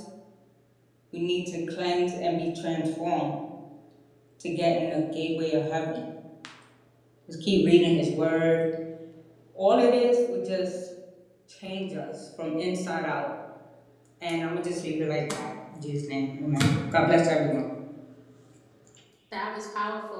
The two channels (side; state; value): both; identical; correlation 1.00